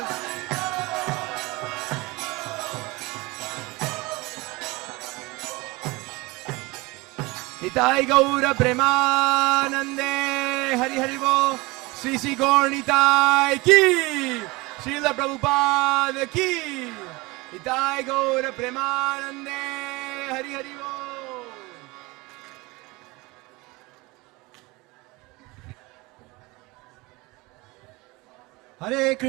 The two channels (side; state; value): left; quieter; 23.6 dB